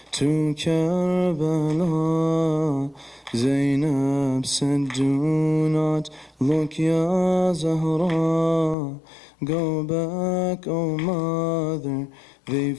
to Karbala, Zainab said, "Do not look, Ya Zahra. Go back, O mother,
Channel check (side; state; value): right; drops out; at 8.8 s